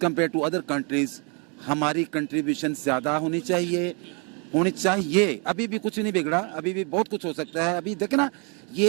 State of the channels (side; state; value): left; quieter; 34.8 dB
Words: compare to other countries हमारी कंट्रीब्यूशन ज़्यादा होनी चाहिए। अभी भी कुछ नहीं बिगड़ा, अभी भी बहुत कुछ हो सकता है। अभी देखे ना,